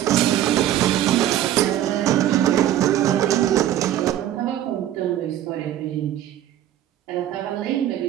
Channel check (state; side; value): quieter; left; 12.1 dB